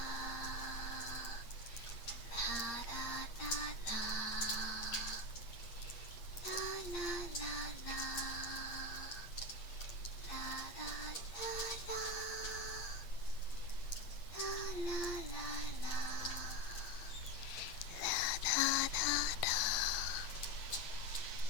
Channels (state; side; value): late; right; 8.6 ms